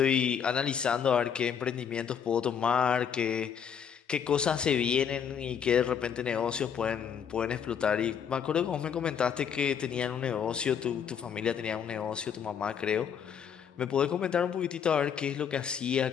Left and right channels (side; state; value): right; quieter; 7.7 dB